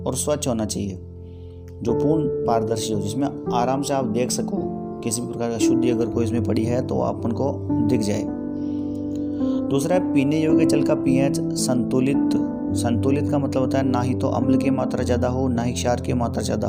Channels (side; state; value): both; identical; correlation 1.00